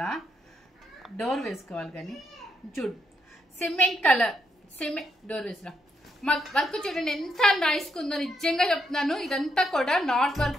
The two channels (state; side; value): normal; both; correlation 0.78